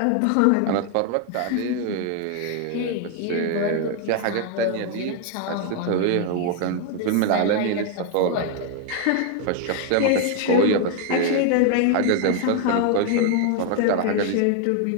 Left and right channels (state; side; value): different; both; correlation 0.00